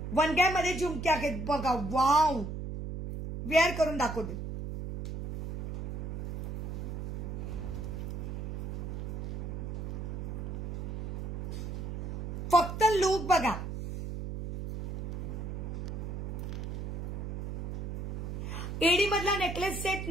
वनग्यामध्ये झुमके आहेत बघा. वाव, वेअर करून दाखवते. फक्त लुक बघा. एडी मधला नेकलेस सेट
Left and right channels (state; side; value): noise; right; hum, 5 dB below the sound